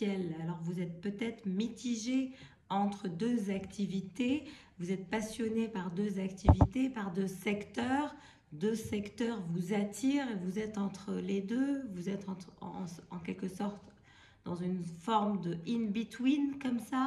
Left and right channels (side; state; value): both; identical; correlation 1.00